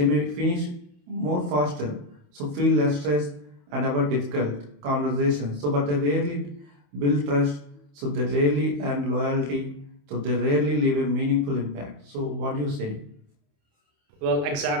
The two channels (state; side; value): late; left; 27 ms